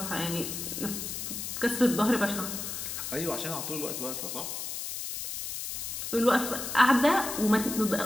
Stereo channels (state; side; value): noise; left; hiss, 5 dB below the sound